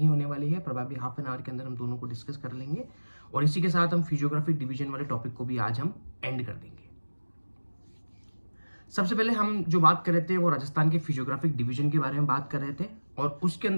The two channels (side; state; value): both; inverted; correlation -1.00